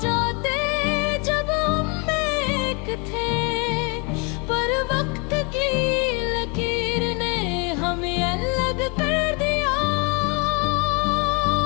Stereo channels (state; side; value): quieter; right; 31.7 dB